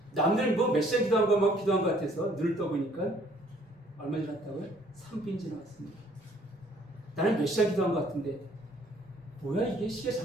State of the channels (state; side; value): normal; both; correlation 0.61